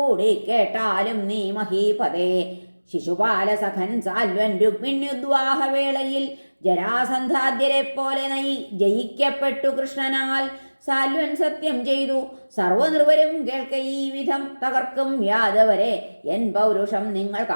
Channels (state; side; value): inverted; both; correlation -1.00